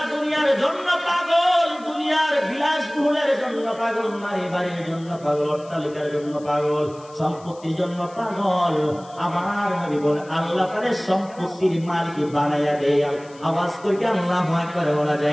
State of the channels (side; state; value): left; noise; hiss, 25 dB below the sound